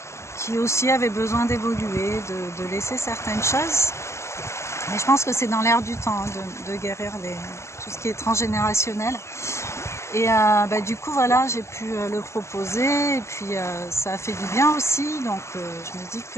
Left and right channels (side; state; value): right; late; 0.13 ms